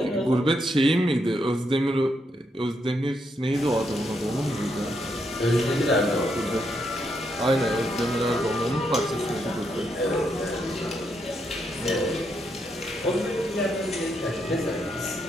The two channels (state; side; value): normal; both; correlation 0.79